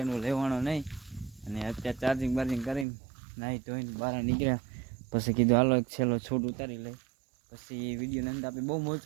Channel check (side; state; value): left; drops out; at 2.9 s